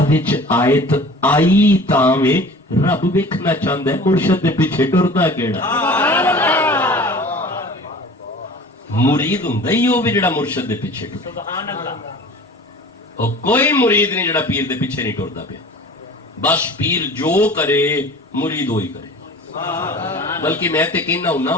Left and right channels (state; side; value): normal; both; correlation 0.42